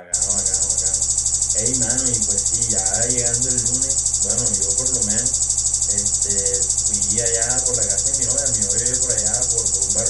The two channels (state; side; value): identical; both; correlation 1.00